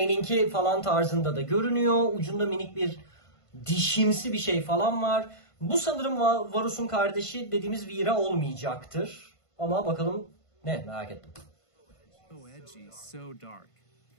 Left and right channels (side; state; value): right; late; 1.5 ms